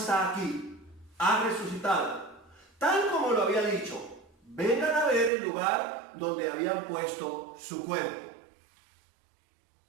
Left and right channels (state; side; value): drops out; left; at 5.3 s